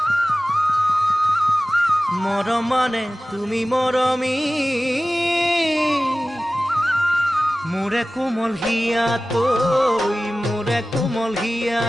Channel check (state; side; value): normal; both; correlation 0.96